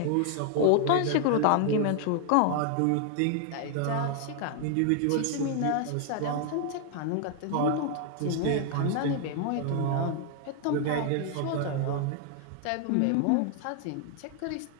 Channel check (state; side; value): different; both; correlation 0.00